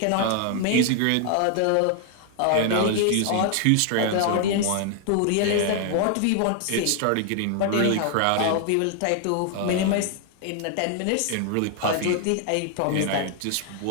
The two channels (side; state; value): both; different; correlation 0.00